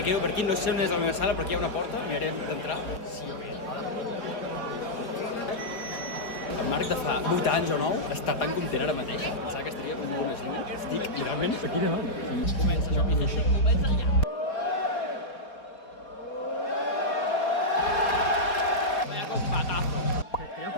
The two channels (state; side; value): late; right; 4.0 ms